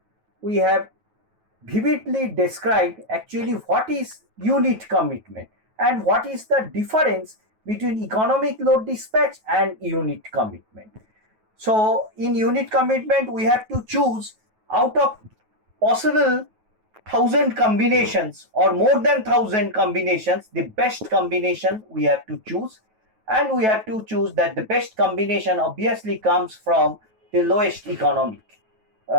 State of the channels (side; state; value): left; late; 9.3 ms